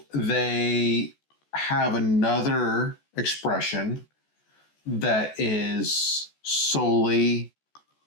they have another expression that is solely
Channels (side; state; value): right; late; 14 ms